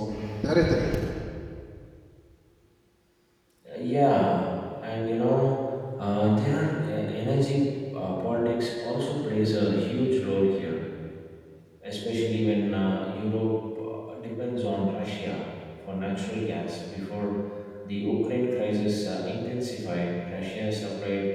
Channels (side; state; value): both; identical; correlation 1.00